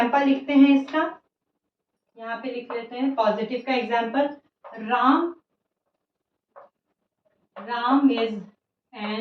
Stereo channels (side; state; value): both; identical; correlation 1.00